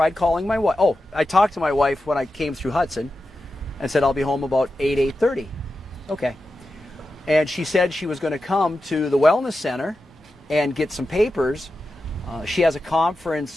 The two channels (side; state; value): both; normal; correlation 0.91